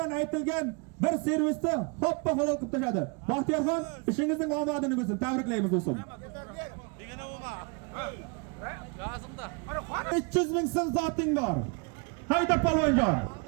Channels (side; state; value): left; quieter; 33.2 dB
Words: aytilgan bir servisni hoppa halol qilib tashladi. Baxtiyorxon, ishingizning omadini bo'lsin. Tabriklaymiz do'stim. 300 ming so'm zoting bor. Hayda palvonjon.